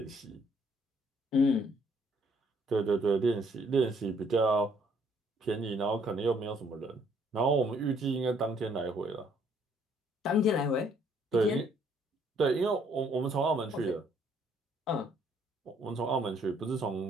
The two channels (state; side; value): normal; both; correlation 0.65